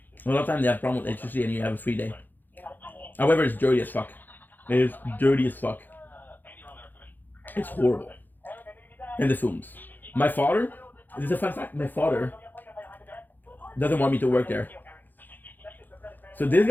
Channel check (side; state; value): right; late; 0.087 ms